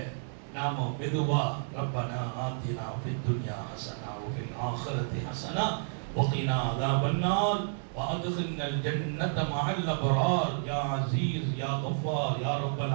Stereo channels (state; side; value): silent; left; digital silence